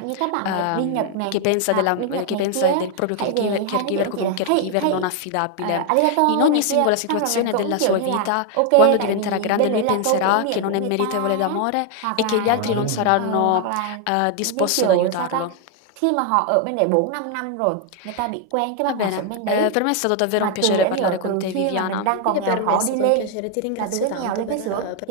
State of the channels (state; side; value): different; both; correlation 0.01